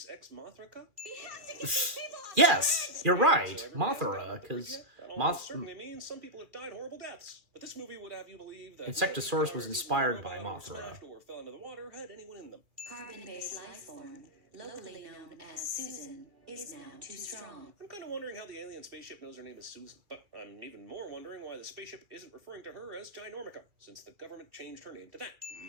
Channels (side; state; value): left; late; 2.4 ms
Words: Ex Mothra? Yes, you're right. Mothra, because Moth... certainly means some people have died horrible deaths. But this movie would have you believe that Insectosaurus was inspired by Mothra. or fell into the water had anyone in them. Carbon-based life form, locally known as Susan, is now too strong. I'm kind of wondering how the alien spaceship knows her name is Susan, but I'm even more wondering why the spaceship isn't referring to her as Ginormica, since the government changed her name to that.